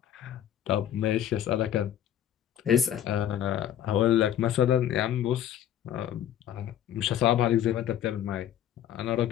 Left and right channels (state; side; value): quieter; right; 10.8 dB